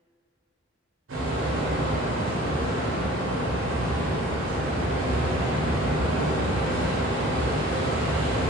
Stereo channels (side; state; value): both; normal; correlation 0.48